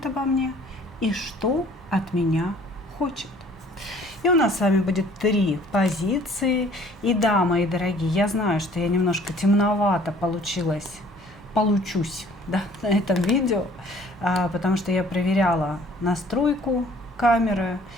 обо мне и что от меня хочет?» И у нас с вами будет 3 позиции. И да, мои дорогие, я знаю, что я немножко темновато получусь, да, на этом видео, потому что я проверяла настройку камеры,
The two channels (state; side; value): normal; both; correlation 0.55